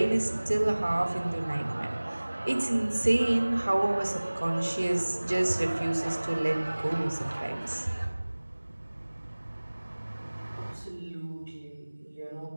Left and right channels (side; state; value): both; inverted; correlation -1.00